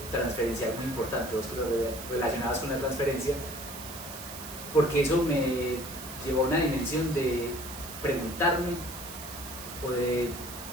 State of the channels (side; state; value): right; noise; hiss, 11 dB below the sound